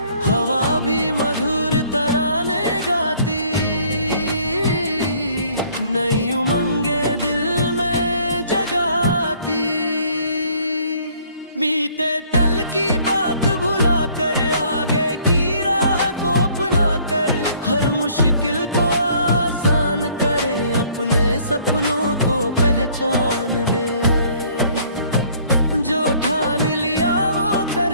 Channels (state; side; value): inverted; both; correlation -0.59